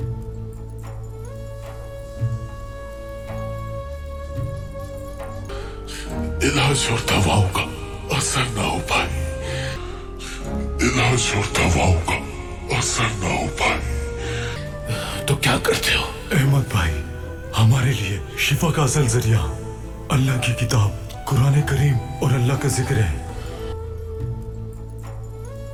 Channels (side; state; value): both; identical; correlation 1.00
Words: इलाज और दवाओं का असर ना हो पाए, इलाज और दवाओं का असर ना हो पाए, तो क्या करते हो? अहमद भाई, हमारे लिए शिफा का असल जरिया अल्लाह की किताब कुरान करीम और अल्लाह का जिक्र है।